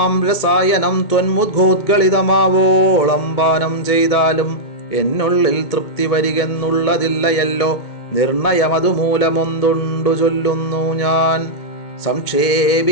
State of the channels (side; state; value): right; late; 2.2 ms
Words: രസായനം ത്വന്മുദ്ഘോദ്ഗളിതമാവോളം പാനം ചെയ്താലും എന്നുള്ളിൽ തൃപ്തി വരികെന്നുള്ളതില്ലയല്ലോ. നിർണയമതുമൂലമൊന്തുണ്ടു ചൊല്ലുന്നു ഞാൻ.